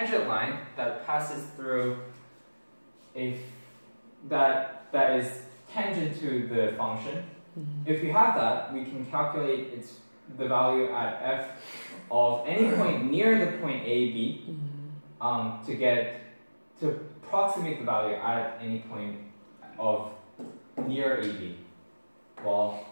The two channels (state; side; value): inverted; both; correlation -1.00